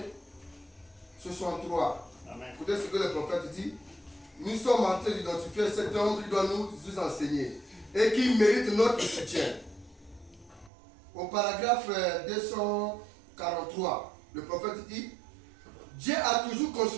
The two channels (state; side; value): drops out; left; at 10.7 s